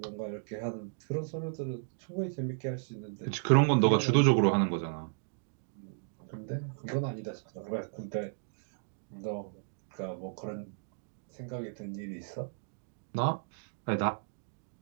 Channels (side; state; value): left; silent; digital silence